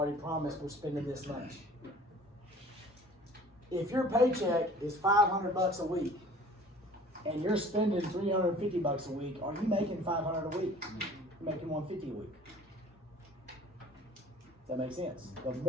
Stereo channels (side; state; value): both; normal; correlation 0.48